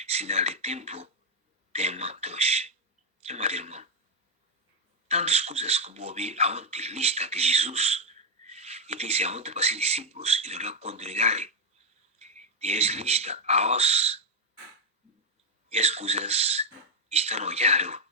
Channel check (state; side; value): normal; both; correlation 0.02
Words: sinal de tempo, tema 2. Meu amado irmão, tantas coisas que vou ouvir aonde lista de Jesus e disse aonde para ser discípulos e não congregarem. Deus lista aos e as coisas estão olhando,